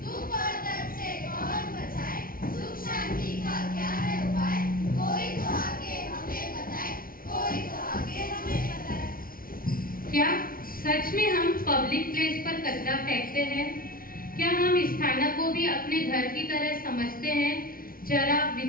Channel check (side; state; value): right; late; 0.42 ms